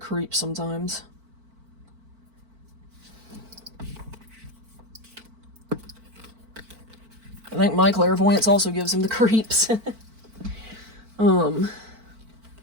sometimes. I think my clairvoyance also gives him the creeps.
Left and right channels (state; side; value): late; left; 4.5 ms